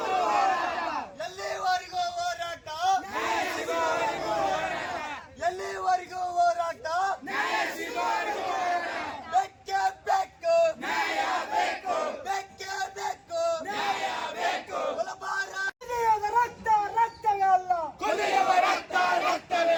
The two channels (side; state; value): both; identical; correlation 1.00